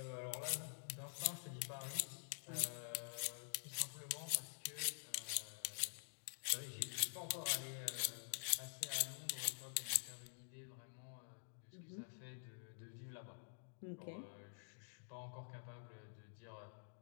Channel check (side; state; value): right; silent; digital silence